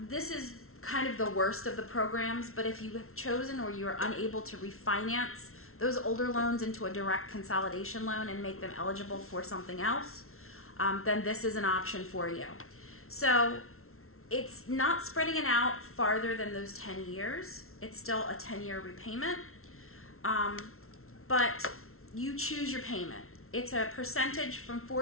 This is kind of the worst of the programs, but if you have chosen or you are unable to refinance those older loans into a direct consolidation loan and make them eligible for something else, then this is an option for you. So it's not spreading it out farther than those 10 years. It's still a 10-year repayment. But you choose your payment. It's a percentage from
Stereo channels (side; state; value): right; late; 0.62 ms